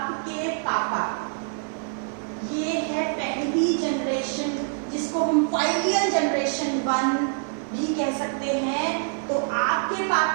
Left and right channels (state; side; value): silent; left; 61 dB below the other